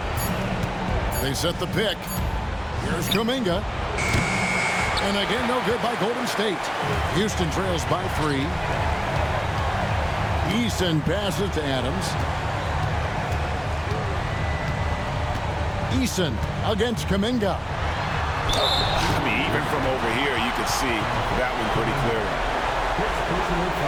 They set the pick. Here's Kuminga. And again, no good by Golden State. Houston trails by 3. Eason passes to Adams. Eason against Kuminga. I mean, even from over here, you could see that one pretty clearly. Personal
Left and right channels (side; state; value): both; identical; correlation 1.00